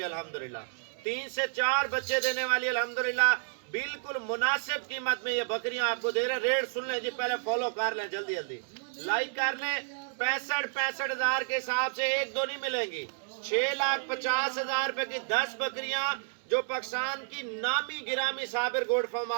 अल्हम्दुलिल्लाह। 3 से 4 बच्चे देने वाली अल्हम्दुलिल्लाह, बिल्कुल मुनासिब कीमत में ये बकरियां आपको दे रहे हैं। रेट सुन लें जी, पहले फॉलो कर लें, जल्दी जल्दी लाइक कर लें। 65 हज़ार के हिसाब से एक दो नहीं मिलेंगी। 6,50,000 रुपए की 10 बकरियां जो पाकिस्तान की नामी गिरामी साबिर गोड फार्म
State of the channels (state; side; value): silent; left; 57 dB below the other